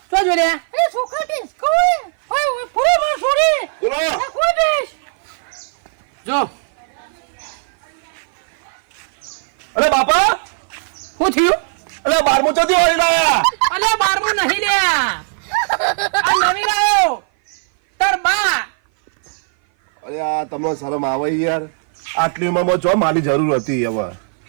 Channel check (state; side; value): silent; left; 57 dB below the other